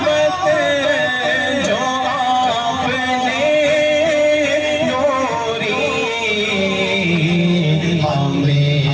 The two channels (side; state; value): both; identical; correlation 1.00